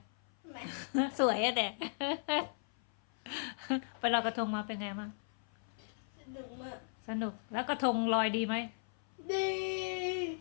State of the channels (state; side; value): silent; right; 53 dB below the other